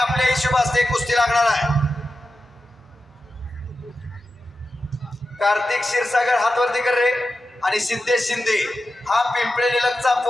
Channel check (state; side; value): normal; both; correlation 0.91